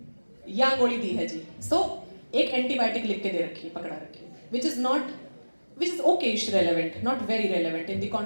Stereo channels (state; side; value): inverted; both; correlation -1.00